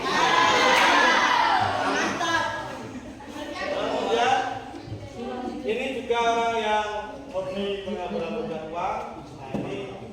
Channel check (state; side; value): identical; both; correlation 1.00